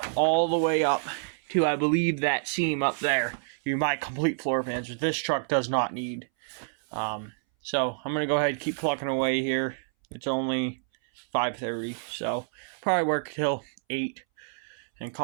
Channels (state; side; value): silent; left; 59 dB below the other